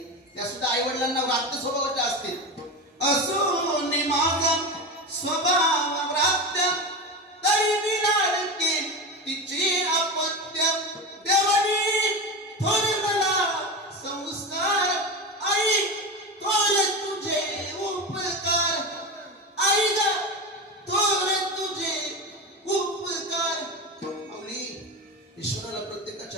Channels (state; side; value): normal; both; correlation 0.22